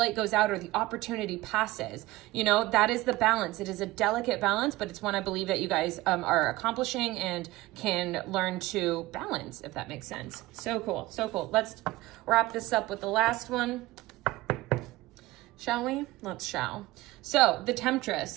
goes out or the opportunity passes. You know, that is the balance. It is a delicate balance, but it's one I believe that you guys are accomplishing and can learn to balance, if that makes sense. So cool. So cool. Let's wrap this up with the last one. Shall we? Shall. So the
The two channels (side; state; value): left; quieter; 18.5 dB